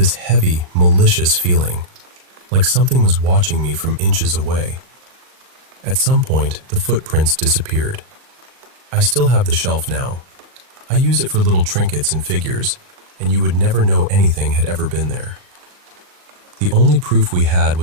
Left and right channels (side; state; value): left; late; 39 ms